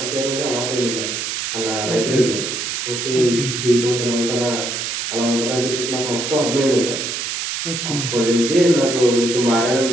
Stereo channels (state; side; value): noise; right; hiss, 3 dB below the sound